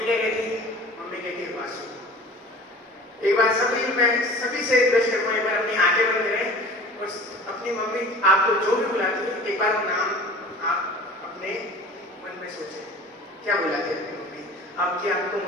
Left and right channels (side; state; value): both; normal; correlation 0.42